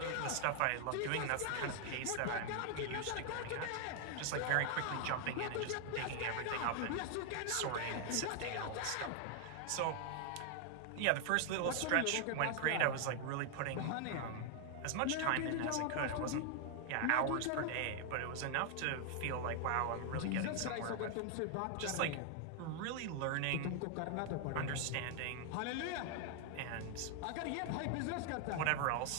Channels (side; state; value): both; different; correlation 0.00